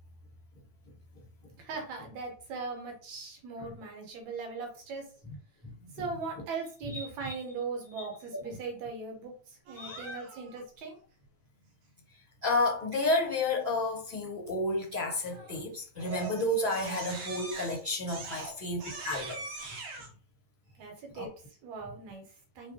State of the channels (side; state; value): left; late; 9.0 ms